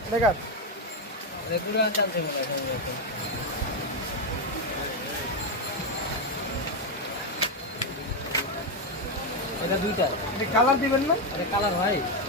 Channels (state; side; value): normal; both; correlation 0.07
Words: এটা কাট। রেগুলার চলছে মনে হয়। এটা দুইটা এটা কালার দিবেন না? আরে কালার ভাই